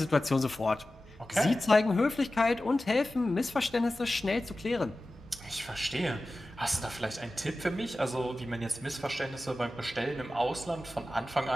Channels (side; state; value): both; normal; correlation 0.95